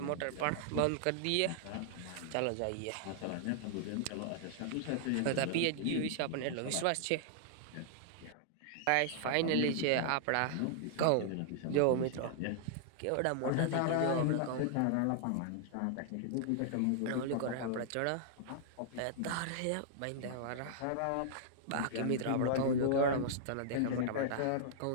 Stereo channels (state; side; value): different; both; correlation -0.01